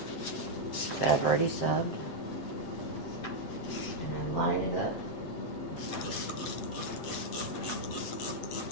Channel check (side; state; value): right; late; 7.8 ms